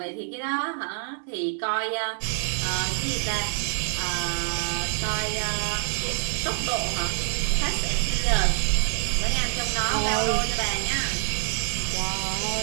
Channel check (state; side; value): silent; left; digital silence